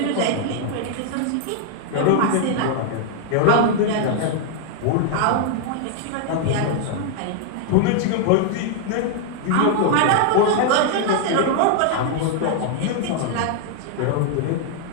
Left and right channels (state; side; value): different; both; correlation 0.00